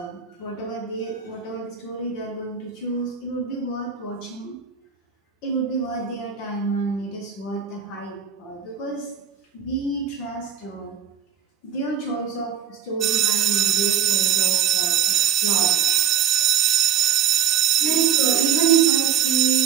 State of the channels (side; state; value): left; quieter; 8.5 dB